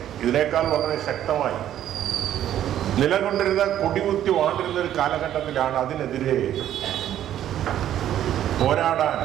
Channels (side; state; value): left; quieter; 11.4 dB